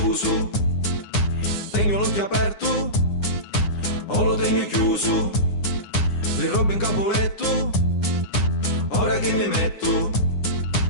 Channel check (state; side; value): late; right; 9.8 ms